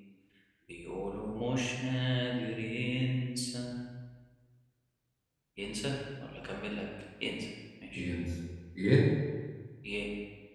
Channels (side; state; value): both; identical; correlation 1.00